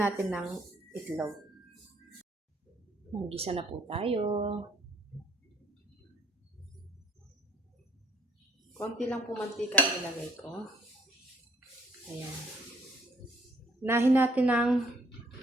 ng itlog. Maggisa na po tayo. Konti lang po mantika ang ilagay ko. Ayan. Nahin natin ng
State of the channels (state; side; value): normal; both; correlation 0.64